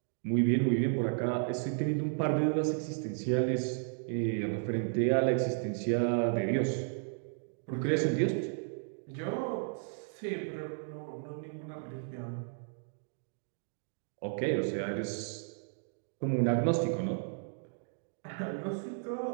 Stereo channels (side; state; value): left; silent; digital silence